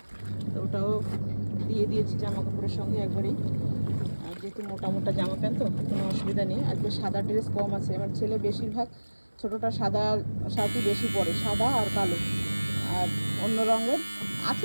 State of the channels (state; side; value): inverted; both; correlation -1.00